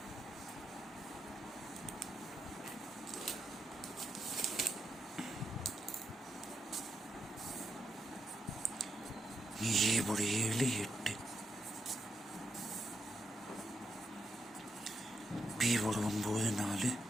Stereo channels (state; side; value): normal; both; correlation 0.81